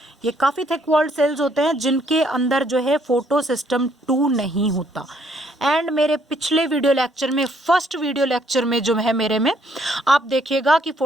ये काफ़ी थिक वॉल्ड सेल्स होते हैं जिनके अंदर जो है फोटोसिस्टम 2 नहीं होता। एंड मेरे पिछले वीडियो लेक्चर में, फर्स्ट वीडियो लेक्चर में जो है मेरे में, आप देखिएगा कि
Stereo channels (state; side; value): normal; both; correlation 0.68